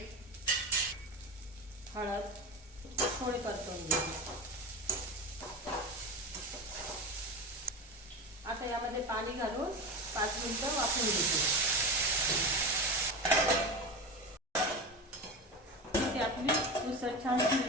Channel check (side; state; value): both; normal; correlation 0.24